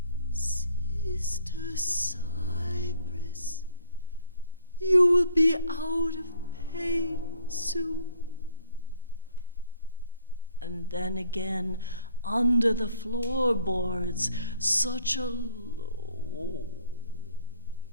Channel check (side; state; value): both; inverted; correlation -0.63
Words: Sister Cypress, you will be out of pain soon. And then again, under the floorboards, such a low